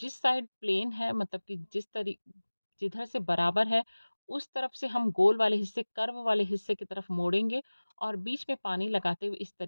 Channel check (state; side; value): inverted; both; correlation -1.00